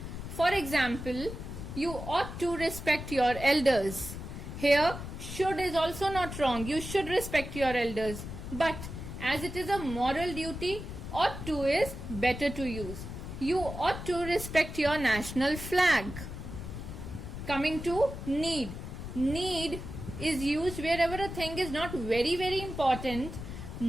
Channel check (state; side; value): noise; left; rumble, 9 dB below the sound